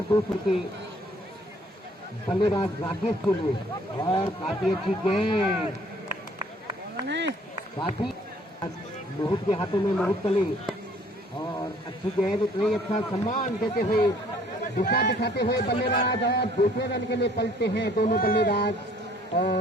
दूसरे के बल्लेबाज राकेश के लिए, और काफी अच्छी गेंद, काफी मोहित के हाथों में मोहित कली, और अच्छी गेंद, उतना ही अच्छा सम्मान देते हुए दिशा दिखाते हुए बल्लेबाज, और दूसरे रन के लिए पलटते हैं दोनों बल्लेबाज,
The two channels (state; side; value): normal; both; correlation 0.58